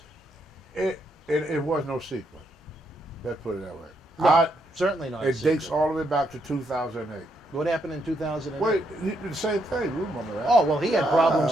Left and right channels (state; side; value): normal; both; correlation 0.77